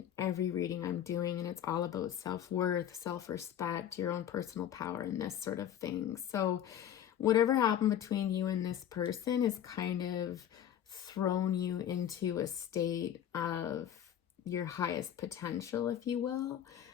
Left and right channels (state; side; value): quieter; right; 10.2 dB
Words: every reading I'm doing, and it's all about self-worth, self-respect, your own personal power, and this sort of thing. So whatever happened between you and this person has kind of thrown you into a state of your highest potential, if you will.